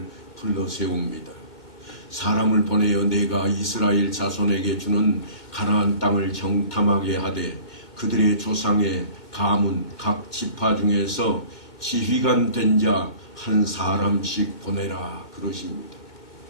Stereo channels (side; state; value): right; late; 2.1 ms